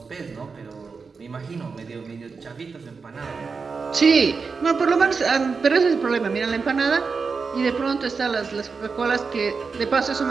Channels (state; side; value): quieter; left; 4.9 dB